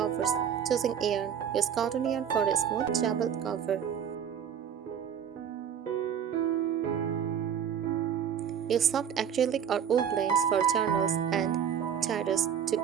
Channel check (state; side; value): quieter; left; 8.3 dB